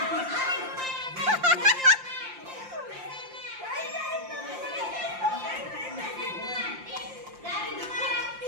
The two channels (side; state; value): left; late; 5.7 ms